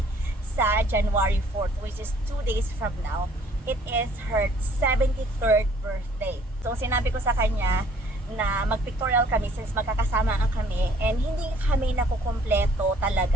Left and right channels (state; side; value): normal; both; correlation 0.58